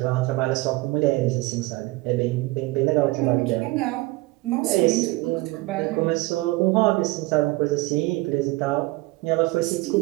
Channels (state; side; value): quieter; left; 21.7 dB